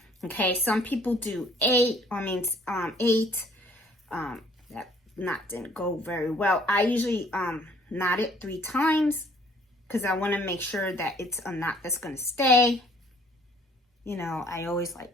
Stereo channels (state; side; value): normal; both; correlation 0.59